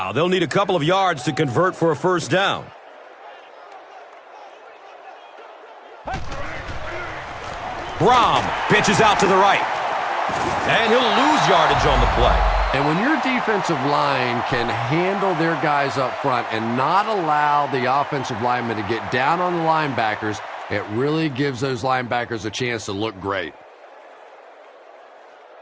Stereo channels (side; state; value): both; identical; correlation 1.00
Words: They'll need a couple of yards to convert for a 1st down. Brom pitches out to the right. And he'll lose yardage on the play. And when your defensive line can handle their guys up front and not allow the offensive linemen to get down on the linebackers, it really gives those linebackers a chance to look great.